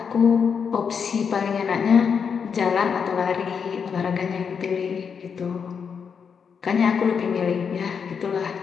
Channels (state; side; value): quieter; right; 6.5 dB